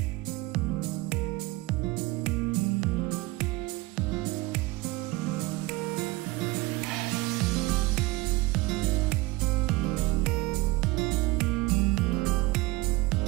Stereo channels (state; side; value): quieter; left; 21.1 dB